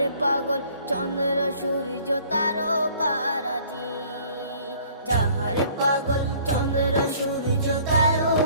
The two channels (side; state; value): both; inverted; correlation -0.55